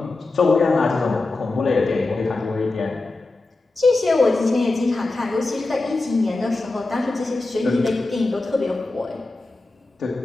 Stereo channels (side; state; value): right; quieter; 3.2 dB